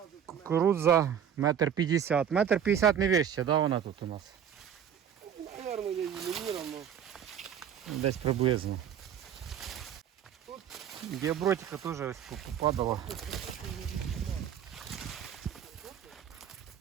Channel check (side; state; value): left; quieter; 8.8 dB